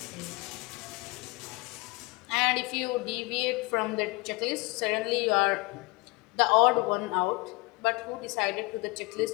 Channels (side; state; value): right; quieter; 24.8 dB